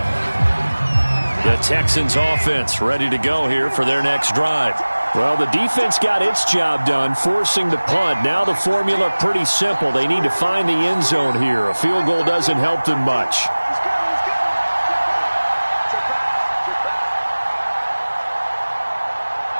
The Texans offense ready to go here for their next drive. Well, the defense got its job done, forcing the punt. Now the formula pretty simple. They need to find the end zone here. A field goal doesn't help them much.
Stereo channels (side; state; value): both; inverted; correlation -1.00